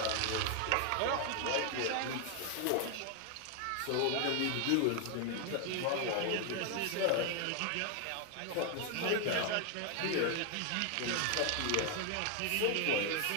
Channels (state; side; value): different; both; correlation 0.00